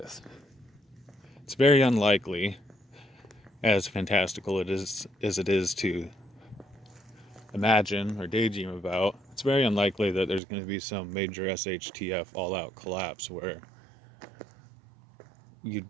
It's very unlikely, as fantastical as it is to imagine or daydream about, it's very unlikely that there's going to be some major SHTF all-out collapse where you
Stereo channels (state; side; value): drops out; left; at 10.4 s